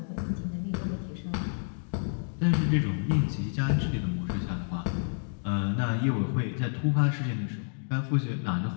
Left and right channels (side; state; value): right; silent; digital silence